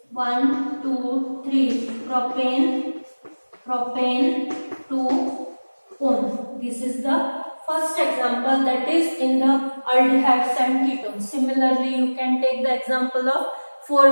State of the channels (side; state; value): both; inverted; correlation -1.00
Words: 1, 2, 3 propane 2 one. This is the first example, that is in the aldehydes and ketones. Similarly, you can take the example of